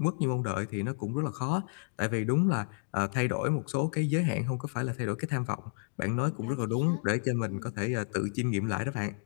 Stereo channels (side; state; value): right; silent; digital silence